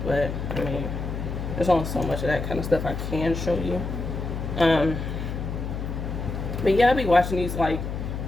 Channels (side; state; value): left; noise; hum, 4 dB below the sound